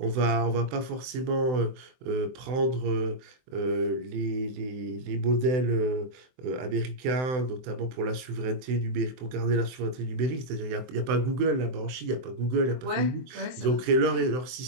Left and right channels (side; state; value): left; late; 23 ms